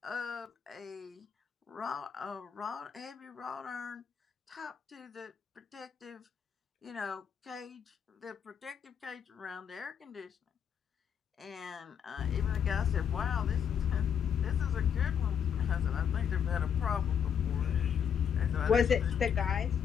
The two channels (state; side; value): quieter; right; 7.9 dB